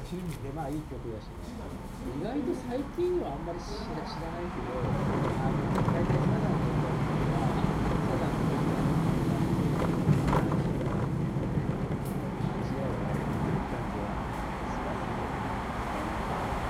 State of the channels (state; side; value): identical; both; correlation 1.00